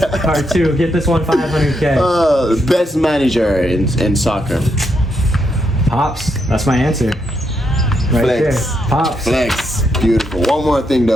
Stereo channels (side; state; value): both; normal; correlation 0.79